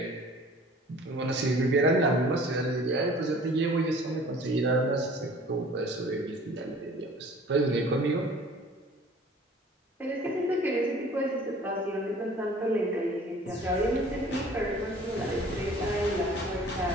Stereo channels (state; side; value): normal; both; correlation 0.49